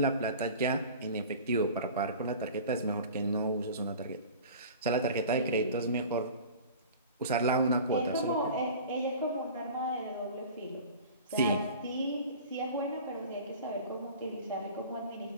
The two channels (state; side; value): inverted; both; correlation -0.39